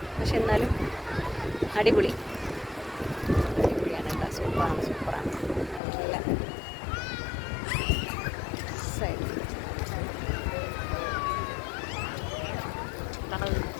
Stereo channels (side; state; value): right; drops out; at 5.8 s